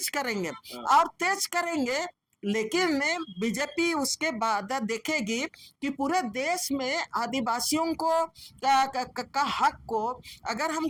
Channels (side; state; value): both; identical; correlation 1.00